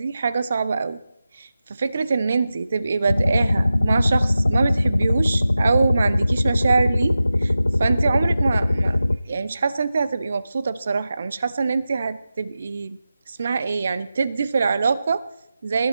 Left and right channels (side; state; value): both; inverted; correlation -0.93